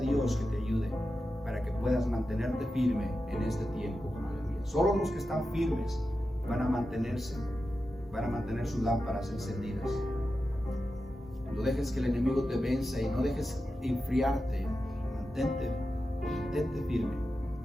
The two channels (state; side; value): normal; both; correlation 0.91